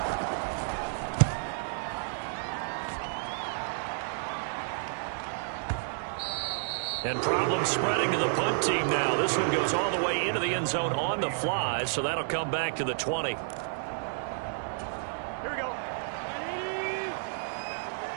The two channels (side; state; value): left; silent; digital silence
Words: And problems spreading to the punt team now. This one goes all the way into the end zone on the fly, so that'll come back to the 20. Here we go.